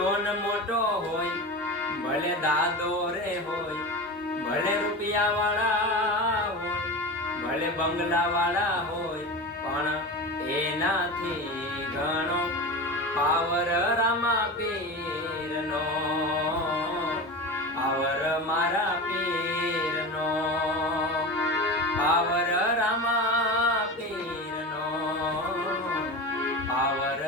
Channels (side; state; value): both; normal; correlation 0.27